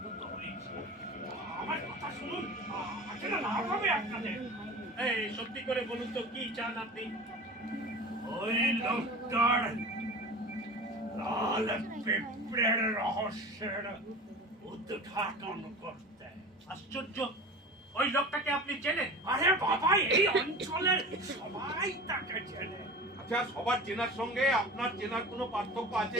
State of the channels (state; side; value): normal; both; correlation 0.35